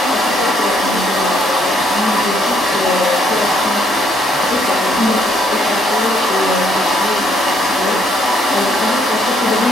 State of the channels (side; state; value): both; normal; correlation 0.69